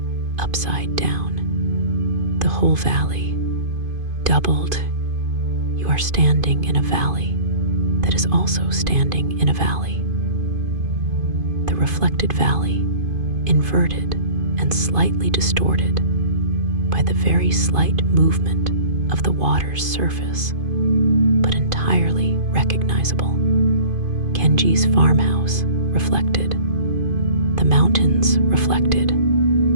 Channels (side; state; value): left; late; 2.5 ms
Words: upside down. The whole valley, doubled. You are standing in a valley that is also standing in a valley. The reflected valley, inverted and slightly distorted by the very slight movement of the water's surface, but entirely recognizable. Kenji's farmhouse reflected. The mountains reflected.